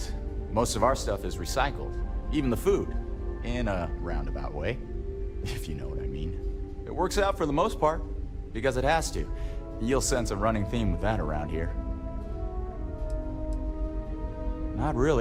Most of our stuff is recycled, even the food, in a roundabout way, if you know what I mean. It works out for the most part, because it has to. You'll sense a running theme with that around here. Not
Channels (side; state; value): both; identical; correlation 1.00